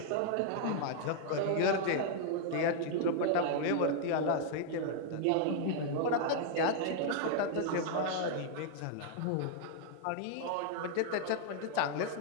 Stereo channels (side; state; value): both; different; correlation -0.01